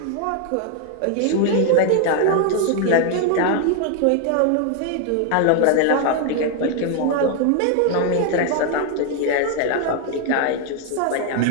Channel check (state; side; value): different; both; correlation 0.01